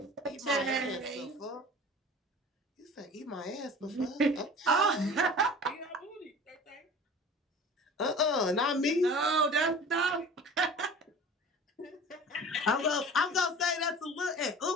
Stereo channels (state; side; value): normal; both; correlation 0.41